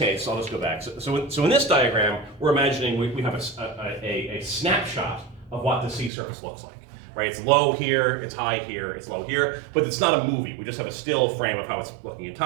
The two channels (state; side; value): drops out; left; at 6.1 s